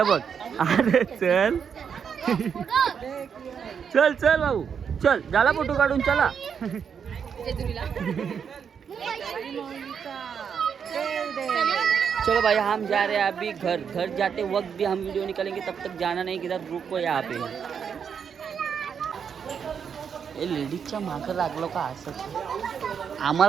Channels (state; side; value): quieter; left; 7.1 dB